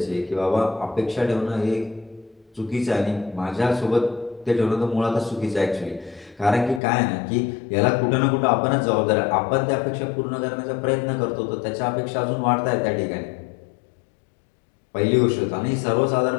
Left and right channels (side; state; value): right; drops out; at 6.8 s